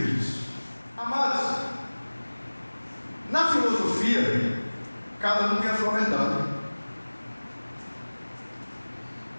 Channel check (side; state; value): both; inverted; correlation -1.00